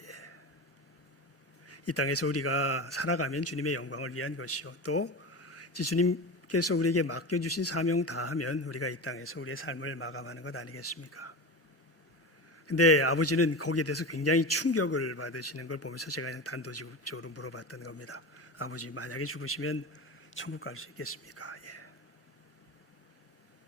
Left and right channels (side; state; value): both; normal; correlation 0.26